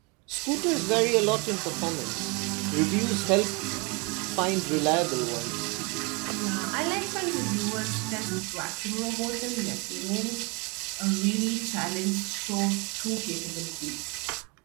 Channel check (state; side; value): quieter; left; 30.2 dB